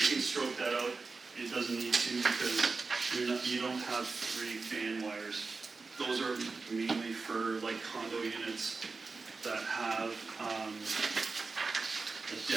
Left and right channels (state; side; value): quieter; left; 4.1 dB